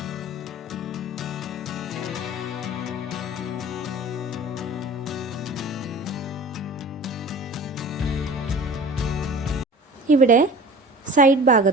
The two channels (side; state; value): both; normal; correlation 0.40